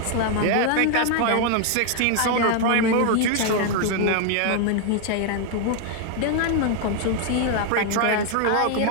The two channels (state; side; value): different; both; correlation 0.00